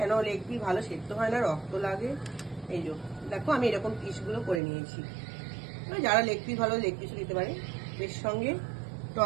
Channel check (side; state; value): left; drops out; at 4.6 s